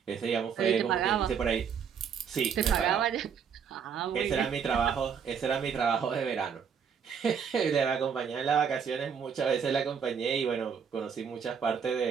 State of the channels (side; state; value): left; quieter; 7.1 dB